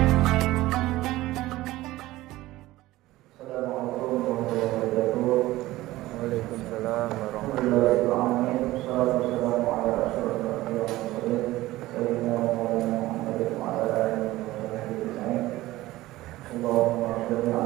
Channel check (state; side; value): quieter; left; 17.3 dB